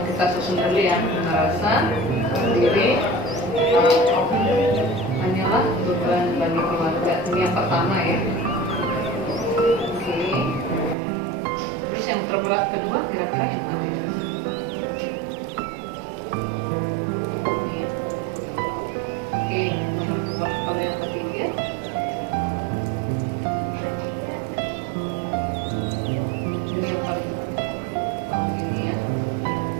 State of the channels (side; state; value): left; drops out; at 11.0 s